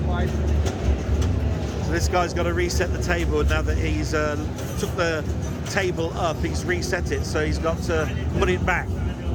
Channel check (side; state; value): both; identical; correlation 1.00